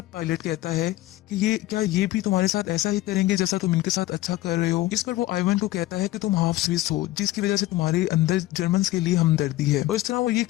पायलट कहता है कि ये भी तुम्हारे साथ ऐसा ही करेंगे जैसा तुम इनके साथ अच्छा कर रहे हो। इस पर वो आइवन को कहता है कि तुम हाफ स्विस हो, जिसकी वजह से तुम्हारे अंदर जर्मन्स के लिए हमदर्दी है। और इस तरह वो ये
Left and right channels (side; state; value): right; quieter; 16.4 dB